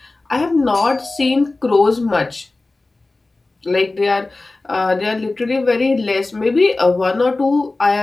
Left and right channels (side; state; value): right; quieter; 3.2 dB